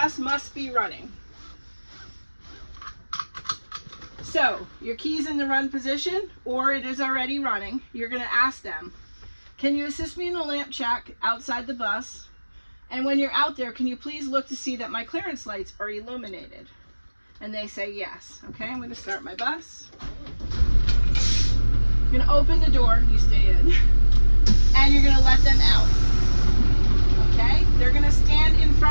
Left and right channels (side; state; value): both; inverted; correlation -1.00